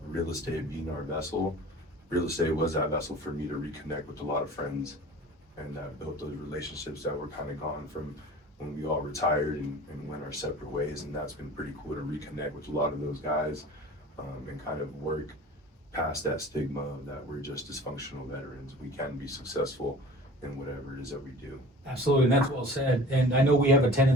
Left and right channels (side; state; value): both; normal; correlation 0.42